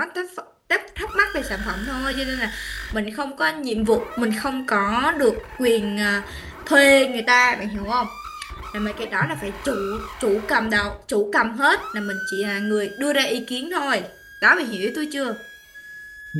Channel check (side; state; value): both; identical; correlation 1.00